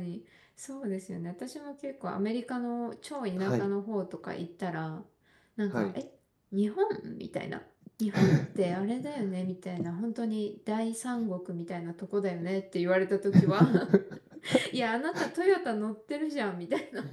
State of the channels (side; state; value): both; identical; correlation 1.00